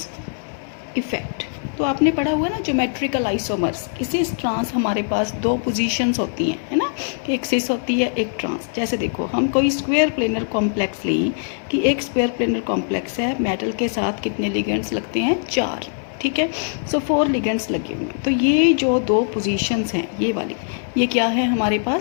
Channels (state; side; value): silent; right; digital silence